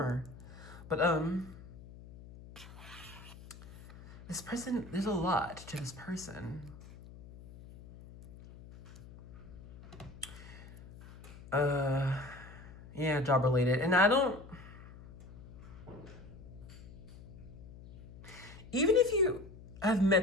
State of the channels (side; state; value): left; noise; hum, 17 dB below the sound